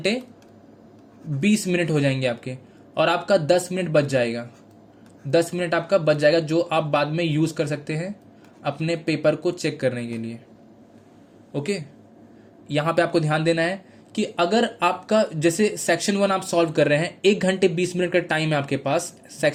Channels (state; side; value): identical; both; correlation 1.00